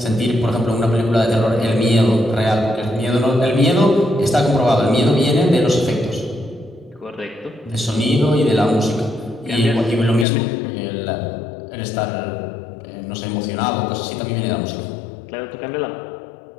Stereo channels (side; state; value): right; drops out; at 10.2 s